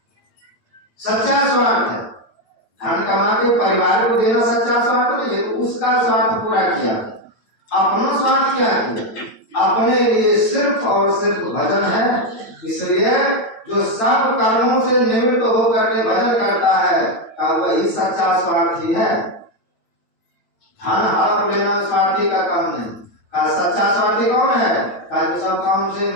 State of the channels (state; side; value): late; right; 8.9 ms